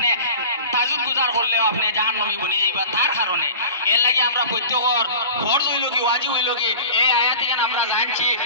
তাজুদ গুজার করলেও আপনি জাহান্নামী বনে যাইবা। তার কারণে এর লাগে আমরা প্রত্যেকর ফরজ হইল কি ওয়াজিব হইল কি এই আয়াতগান আমরা জানছি,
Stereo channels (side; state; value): both; inverted; correlation -0.37